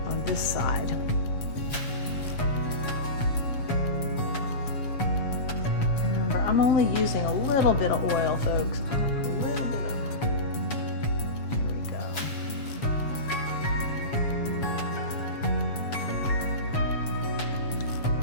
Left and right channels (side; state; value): right; late; 7.1 ms